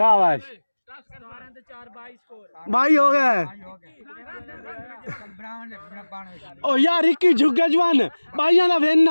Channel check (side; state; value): both; inverted; correlation -1.00